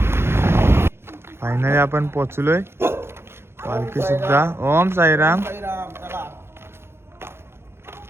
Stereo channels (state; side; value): late; left; 0.12 ms